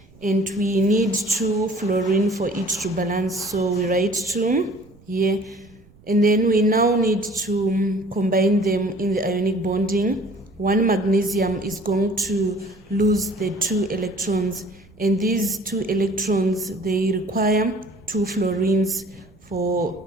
and we need 2 fluorine for it to balance. So we write 2 here. And then we now need to combine them in the ionic bonding. 1 magnesium is going to lose the 2 electrons. And these 2 electrons, they require 2 fluorines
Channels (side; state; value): right; noise; rumble, 27 dB below the sound